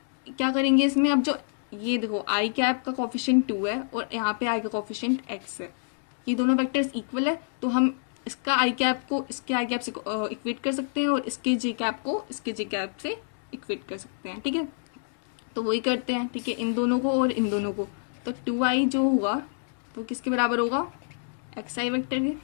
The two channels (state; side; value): silent; right; digital silence